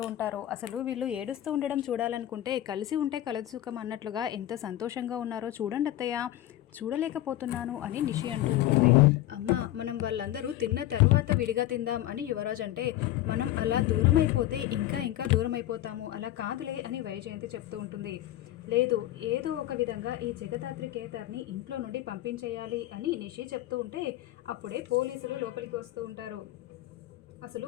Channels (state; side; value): quieter; right; 14.1 dB